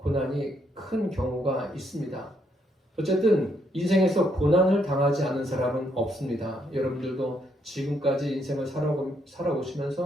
큰 경우가 있습니다. 어쨌든 인생에서 고난을 당하지 않은 사람은 없습니다. 여러분들도 지금까지 인생을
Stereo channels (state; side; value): normal; both; correlation 0.74